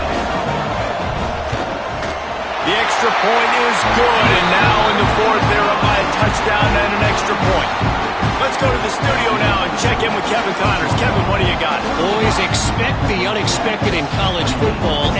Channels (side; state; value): both; identical; correlation 1.00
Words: The extra point is good, and now in the 4th, they're up by a touchdown and an extra point. Let's go to the studio now and check in with Kevin Connors. Kevin, what do you got? Boys, expect the unexpected in college football,